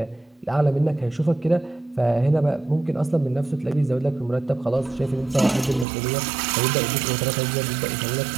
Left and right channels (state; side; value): drops out; left; at 5.9 s